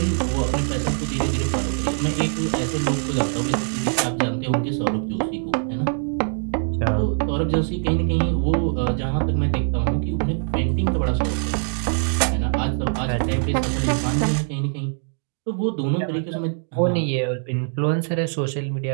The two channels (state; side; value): silent; left; digital silence